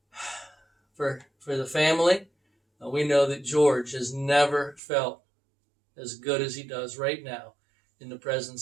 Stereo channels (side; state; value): left; drops out; at 4.8 s